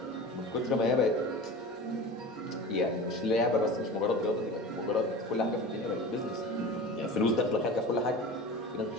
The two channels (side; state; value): both; normal; correlation 0.34